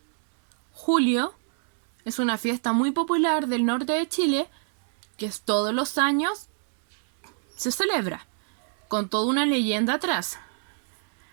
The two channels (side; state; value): left; silent; digital silence